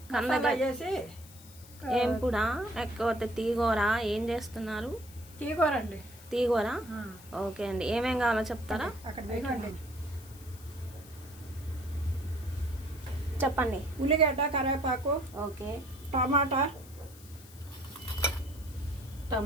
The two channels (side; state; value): left; noise; hiss, 20 dB below the sound